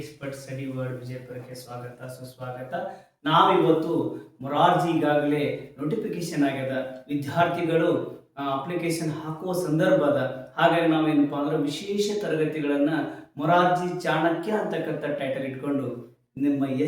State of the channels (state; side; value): identical; both; correlation 1.00